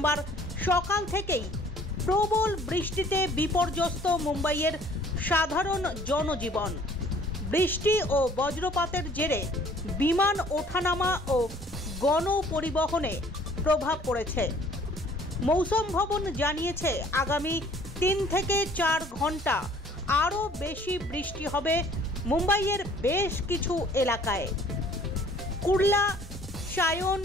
সকাল থেকেই প্রবল বৃষ্টিতে বিপর্যস্ত মুম্বাইয়ের সাধারণ জনজীবন। বৃষ্টি ও বজ্রপাতের জেরে বিমান ওঠানামা ও গণপরিবহনে প্রভাব পড়েছে। মৌসুম ভবন জানিয়েছে, আগামী 3 থেকে 4 ঘন্টা আরও বেশি বৃষ্টি হবে মুম্বাইয়ের বেশ কিছু এলাকায়। কুর্লা, সায়ন,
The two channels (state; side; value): normal; both; correlation 0.55